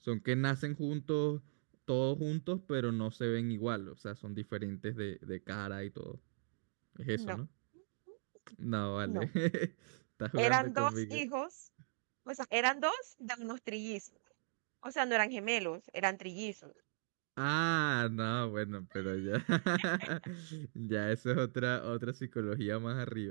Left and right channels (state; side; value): silent; left; digital silence